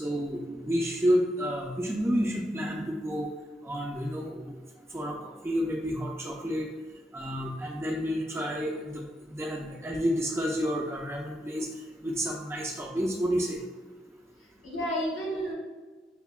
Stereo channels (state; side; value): normal; both; correlation 0.82